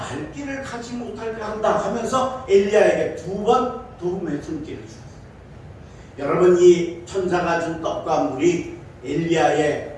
길을 가지 못하게 한다 하면서 엘리야에게 두 번 도움의 손길을 주었어요. 여러분, 이 천사가 준 떡과 물이 엘리야의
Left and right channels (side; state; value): both; identical; correlation 1.00